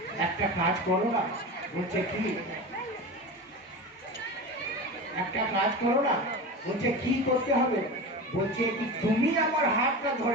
একটা কাজ করো না। বলছে কি? একটা কাজ করো না। বলছে কি করতে হবে? বলছে কি তুমি আমার হাতটা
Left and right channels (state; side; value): normal; both; correlation 0.27